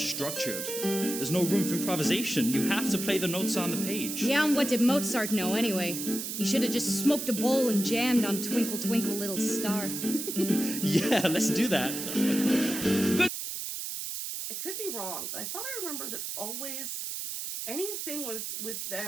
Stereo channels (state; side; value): noise; right; hiss, 5 dB below the sound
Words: There's no room for improvisation. You have to play the notes on the page. Yeah, and what did Mozart know anyway? He should have just smoked a bowl and jammed on Twinkle Twinkle Little Star. Yeah, let's do that. I could be wrong, but I thought I remember that always, anything with